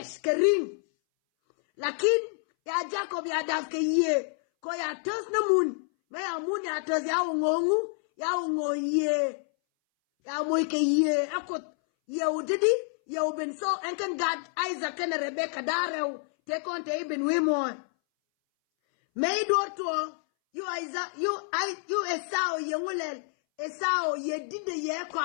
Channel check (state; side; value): silent; right; 59 dB below the other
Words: ka ring. Lakin ya Jacob ya daf ka ye. Ko ya tos na mun. Me ya mun ya tos ya ungongu. Ya ungo ye. Ya moy ka ye. Akot ye udidi. Ye uben so enken God Isaac and Rebecca darew. Te konte iben wimon. Me do to you Isaac you Esau ye ngulel. Esau ye dide ye